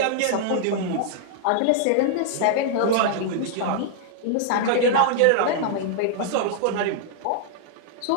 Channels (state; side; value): different; both; correlation -0.01